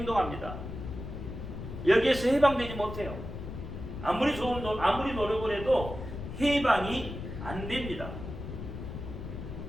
여기에서 해방되지 못해요. 아무리 노력을 해도 해방이 안 됩니다.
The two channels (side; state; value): left; noise; rumble, 8 dB below the sound